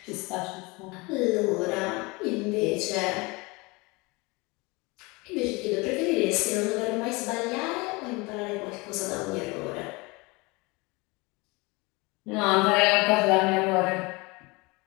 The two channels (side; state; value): right; quieter; 25.5 dB